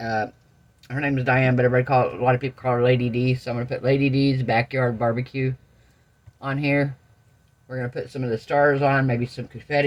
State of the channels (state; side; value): identical; both; correlation 1.00